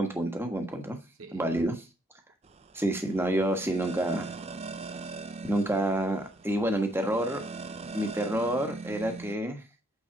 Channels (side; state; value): both; normal; correlation 0.70